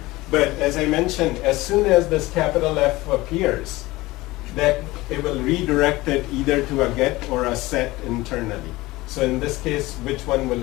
But as I mentioned, as soon as this capital F appears, that it will redirect it either to a get or a set internally. So in this case, which one will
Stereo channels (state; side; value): quieter; right; 19.7 dB